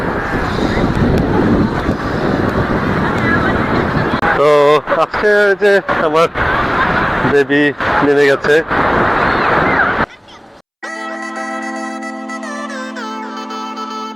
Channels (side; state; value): both; identical; correlation 1.00